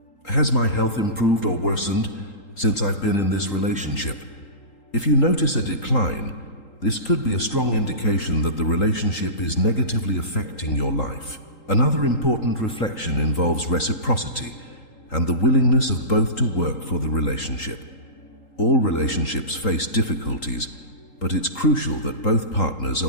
Has my health improved or worsened since I've been in this relationship? If you notice a decline, this could be a strong indication that the relationship is negatively affecting your life. Another important reflection involves reciprocity and the willingness of both to work for the relationship. All relationships face difficulties, but it's crucial that both partners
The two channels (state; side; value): late; right; 3.8 ms